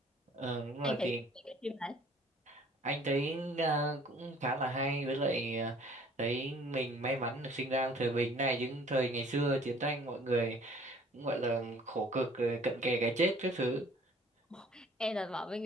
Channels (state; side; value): normal; both; correlation 0.54